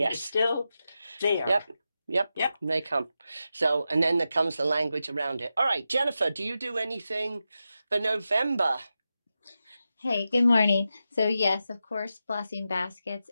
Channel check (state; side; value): inverted; both; correlation -0.90